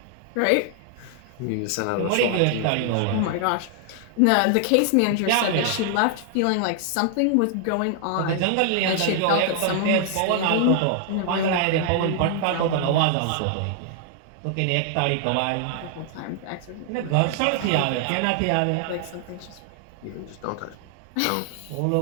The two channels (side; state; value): both; different; correlation 0.00